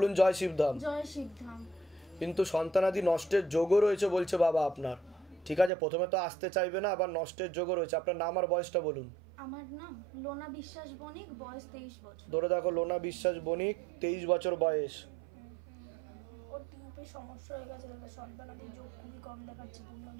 জয় শিবধাম। জয় শিবধাম। কিন্তু সন্তানাদি নষ্টের যোগও রয়েছে বলছে বাবা আপনার। ঠিক আছে, প্রথমে তো আসতে চাইবে না, আবার নষ্টের যোগও রয়েছে। আপনার নাম আর বয়সটা বলুন। আমার নাম লোনা বিশ্বাস বণিক, বয়স 23 বছর। ধরে দেখো, লোনা বিশ্বাস বণিক, 23 বছর বয়স। ওর টিউবে সমস্যা হয়ে গেছে, সন্তানাদি যোগ খুবই কম দেখাচ্ছে, পূর্ণ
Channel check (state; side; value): drops out; left; at 5.7 s